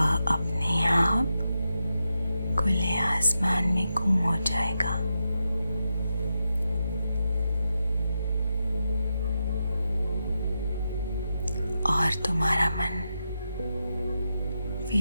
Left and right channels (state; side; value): inverted; both; correlation -0.87